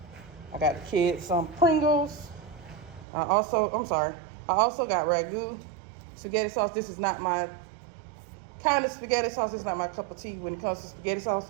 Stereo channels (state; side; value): drops out; left; at 3.1 s